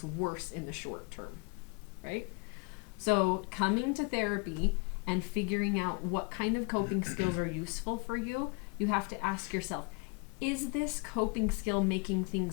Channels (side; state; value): right; quieter; 31.7 dB